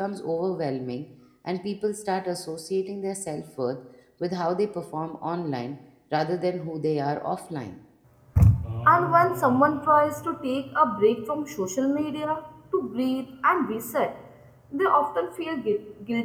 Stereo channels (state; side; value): identical; both; correlation 1.00